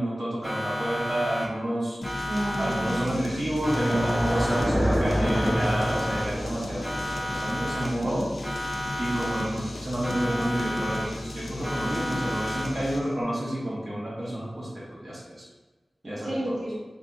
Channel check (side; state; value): both; normal; correlation 0.96